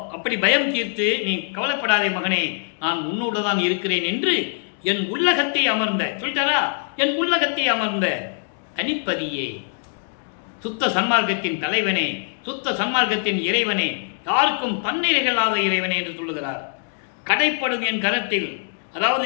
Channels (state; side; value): silent; right; 64 dB below the other